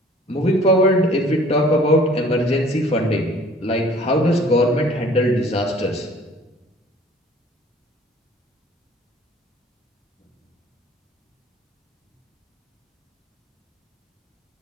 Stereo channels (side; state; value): both; normal; correlation 0.52